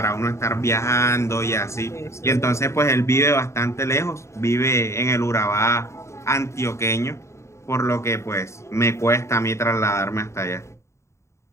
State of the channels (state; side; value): late; right; 0.14 ms